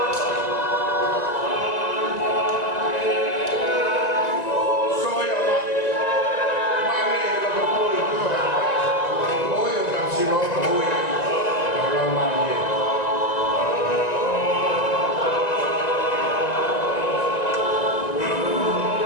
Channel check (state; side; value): late; right; 1.9 ms